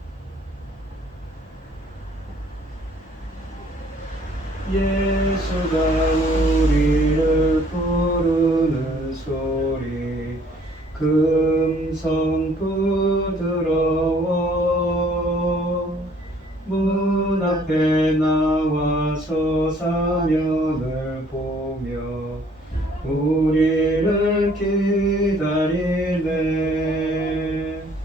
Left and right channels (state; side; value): normal; both; correlation 0.60